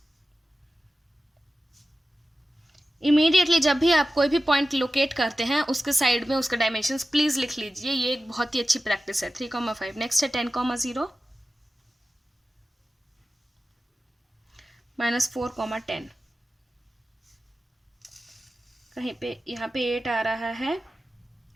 इमीडिएटली जब भी आप कोई भी पॉइंट लोकेट करते हैं उसके साइड में उसके डायमेंशंस प्लीज लिख लीजिए। ये एक बहुत ही अच्छी प्रैक्टिस है। 3,5। नेक्स्ट है 10,0 -4,10। कहीं पे यहाँ पे 8 आ रहा है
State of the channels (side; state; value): both; normal; correlation 0.94